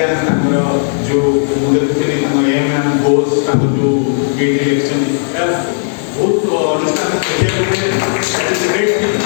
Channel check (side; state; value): right; silent; digital silence